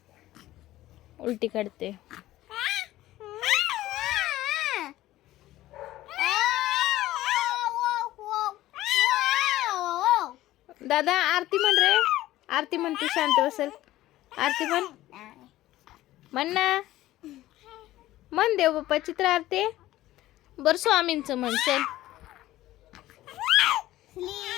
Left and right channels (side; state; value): right; quieter; 15.5 dB